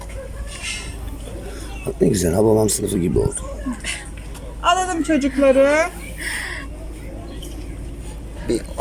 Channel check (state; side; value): identical; both; correlation 1.00